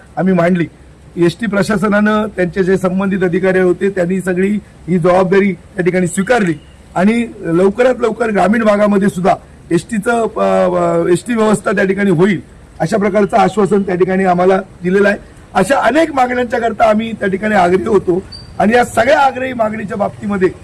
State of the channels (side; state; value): both; identical; correlation 1.00